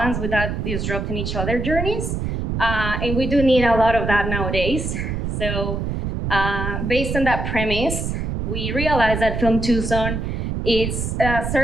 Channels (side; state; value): right; noise; rumble, 3 dB below the sound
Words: without disrupting each other's journeys. And we do need a lot of that nowadays. So based on that premise, we realize that Film Tucson